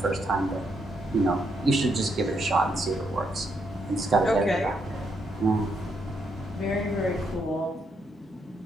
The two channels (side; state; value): both; normal; correlation 0.77